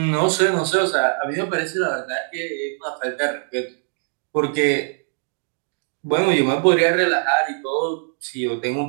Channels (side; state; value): left; silent; 56 dB below the other